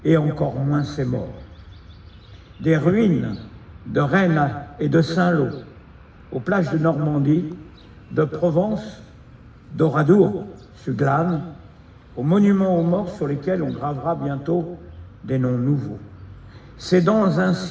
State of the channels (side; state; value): both; identical; correlation 1.00